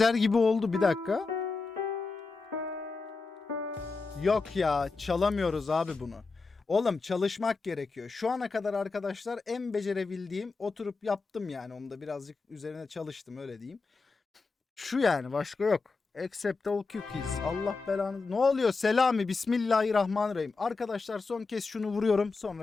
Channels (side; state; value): right; quieter; 4.1 dB